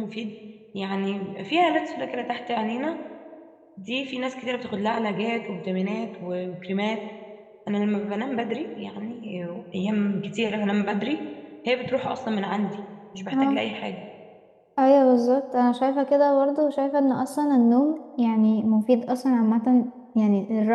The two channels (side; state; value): both; identical; correlation 1.00